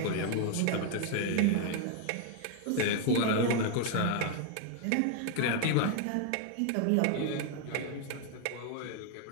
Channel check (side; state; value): both; different; correlation 0.00